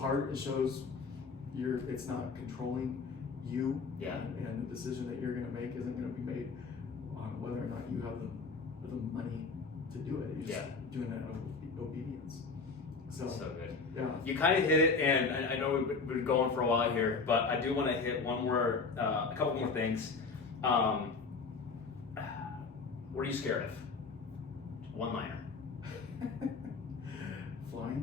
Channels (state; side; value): quieter; right; 4.6 dB